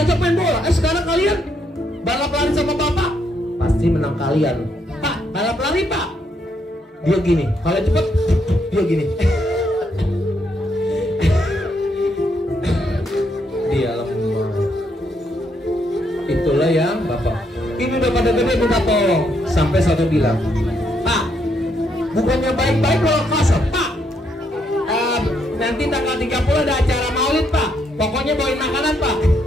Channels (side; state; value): both; normal; correlation 0.75